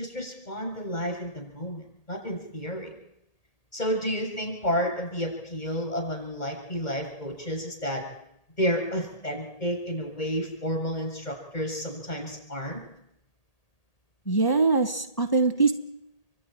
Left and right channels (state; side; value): late; right; 1.8 ms